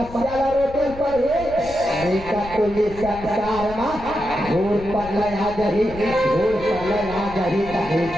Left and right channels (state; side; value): noise; left; rumble, 14 dB below the sound